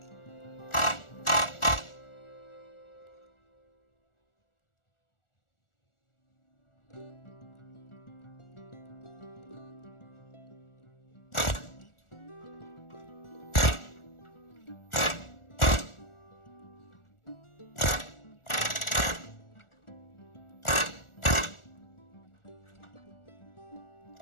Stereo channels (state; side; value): late; right; 1.4 ms